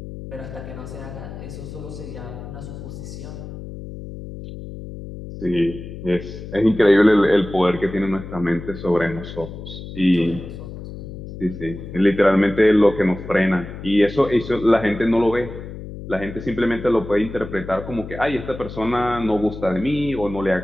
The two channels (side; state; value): left; noise; hum, 11 dB below the sound